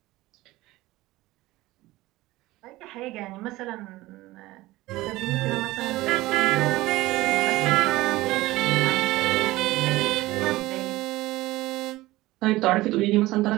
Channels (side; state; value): left; quieter; 18.4 dB